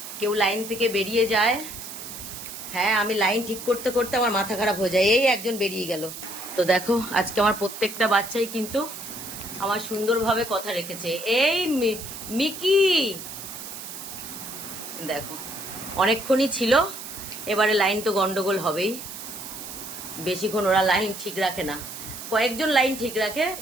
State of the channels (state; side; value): noise; right; hiss, 10 dB below the sound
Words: কেউ লাইন থেকে বেরিয়ে যায়। হ্যাঁ, আমি লাইন ঠিক করতে করতে আমার মাথা খারাপ হয়ে যায়। এই একজন বেরিয়ে গেল। তো দেখো আজকে আমার প্রত্যেকটা বাচ্চাই কিন্তু আমার সুন্দরভাবে কথা রেখেছে। এই মিকি দেখো অনেকক্ষণই ছিল, এবারে লাইন তো গন্ডগোল হবেই। বেশিক্ষণ ওরা লাইন ঠিক রাখে না, কয়েকজন লাইন ঠিক রাখে,